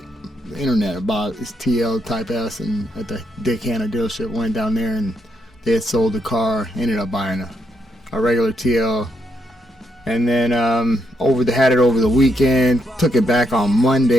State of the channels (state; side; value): normal; both; correlation 0.78